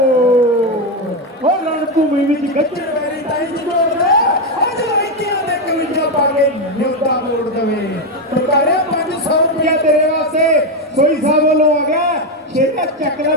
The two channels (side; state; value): both; normal; correlation 0.08